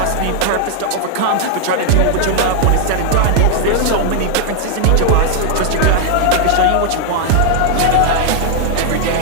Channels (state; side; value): different; both; correlation 0.00